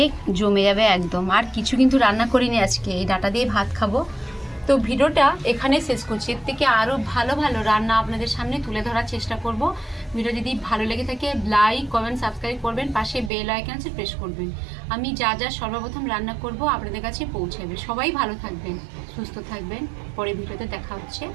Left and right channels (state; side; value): drops out; left; at 13.3 s